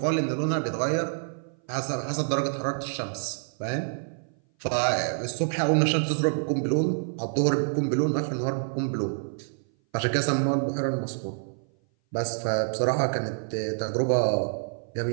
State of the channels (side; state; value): left; silent; 57 dB below the other